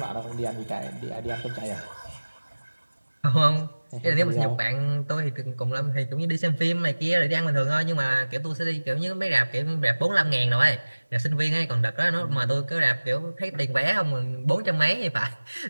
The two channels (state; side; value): inverted; both; correlation -1.00